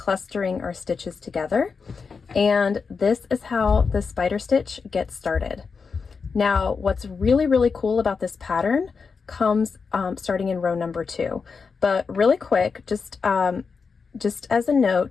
our stitches together. And this is how the spider stitch gets started. Now, what's really cool about this pattern comes starting in row number 2. But really quick, just as a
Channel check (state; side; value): quieter; right; 5.2 dB